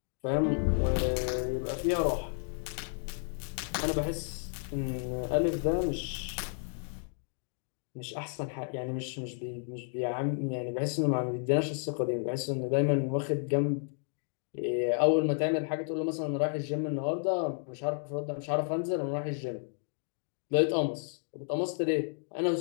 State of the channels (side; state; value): right; silent; 56 dB below the other